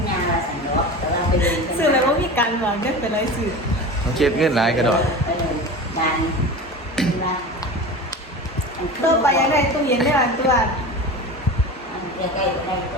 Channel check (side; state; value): both; normal; correlation 0.31